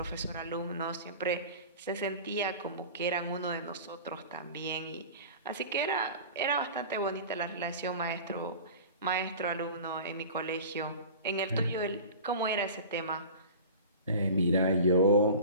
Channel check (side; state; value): both; inverted; correlation -0.37